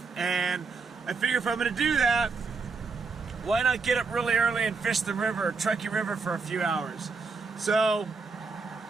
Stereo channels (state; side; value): quieter; left; 4.6 dB